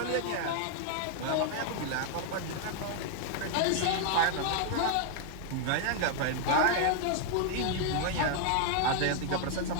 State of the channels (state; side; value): different; both; correlation 0.00